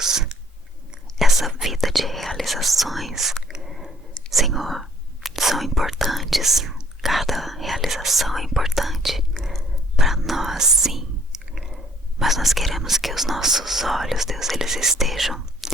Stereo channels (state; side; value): normal; both; correlation 0.62